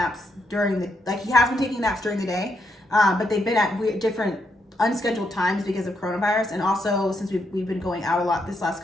he has been taking naps during the day, but they've been at different unscheduled times because of coronavirus, and also since we've been going out a lot this last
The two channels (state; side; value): normal; both; correlation 0.79